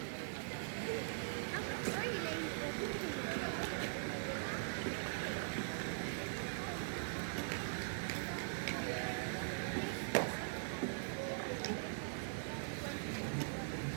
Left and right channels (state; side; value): silent; left; digital silence